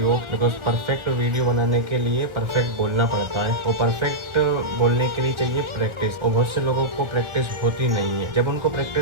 because perfect video बनाने के लिए परफेक्ट बोलना पड़ता है। और परफेक्ट बोलने के लिए चाहिए प्रैक्टिस, और बहुत से लोगों को प्रैक्टिस होती नहीं है। जब उनको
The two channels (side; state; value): left; late; 1.4 ms